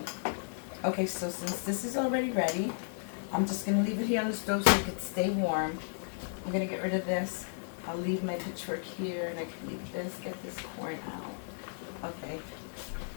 okay, so since this is already ready, I'm just going to leave it here on the stove so it can stay warm. I'm going to get rid of this. I'll leave my pitchfork here, and I can leave this, get this corn out. Okay.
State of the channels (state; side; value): silent; right; digital silence